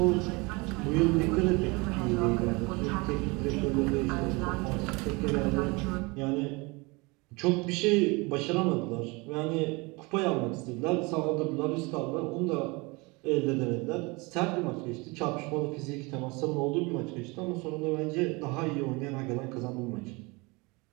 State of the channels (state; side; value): quieter; left; 26.4 dB